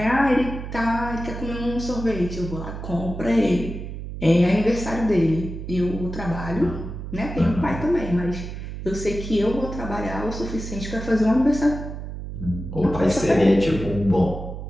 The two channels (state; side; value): noise; right; hum, 8 dB below the sound